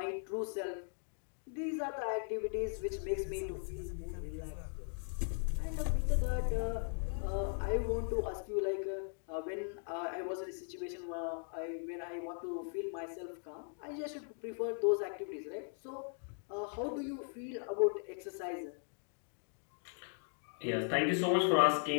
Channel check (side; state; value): right; silent; 52 dB below the other